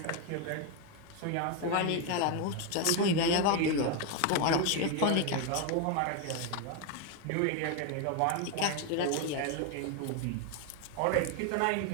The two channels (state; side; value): different; both; correlation 0.01